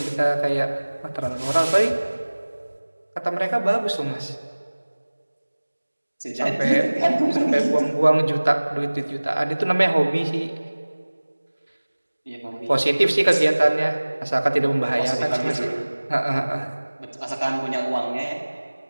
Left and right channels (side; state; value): both; inverted; correlation -1.00